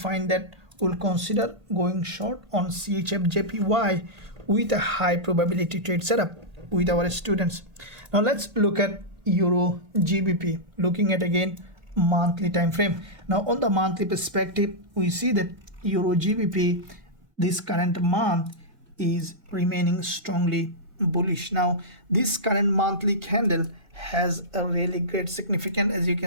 that, we'll consider going short on CHFJPY with a high probability trade setup with our students. Now let's look at EURGBP. Looking at again monthly time frame. Now on the monthly perspective, we see that EURGBP this current month is remaining strongly bullish. Now this current monthly candle has a really great significance. As you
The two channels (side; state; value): left; late; 1.8 ms